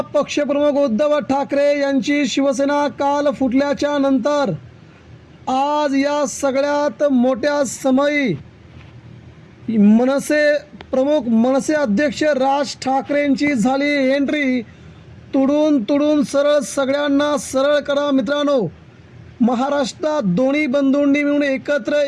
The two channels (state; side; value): identical; both; correlation 1.00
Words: पक्षप्रमुख उद्धव ठाकरे यांची शिवसेना काल फुटल्याच्या नंतर आज या सगळ्यात मोठ्या समयी मनसे अध्यक्ष राज ठाकरेंची झाली एंट्री। तुडून सरळ सगळ्यांना सरळ करा मित्रांनो। महाराष्ट्रात दोन्ही बंधूंनी मिळून एकत्र